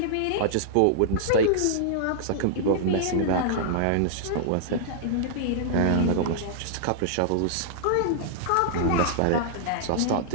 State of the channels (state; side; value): different; both; correlation -0.01